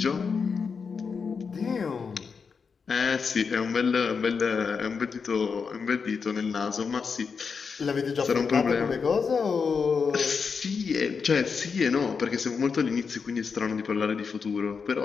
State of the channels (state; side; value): quieter; right; 5.6 dB